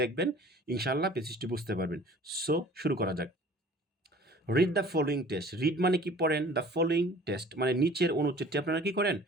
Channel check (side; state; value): both; normal; correlation 0.48